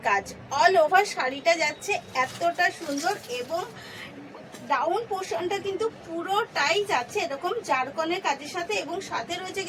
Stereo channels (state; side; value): identical; both; correlation 1.00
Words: কাজ, অল ওভার শাড়িটা যাচ্ছে এতটা সুন্দর, এবং ডাউন পোর্শনটা কিন্তু পুরোটাই যাচ্ছে এরকম জারকনের কাজের সাথে, এবং সাথে রয়েছে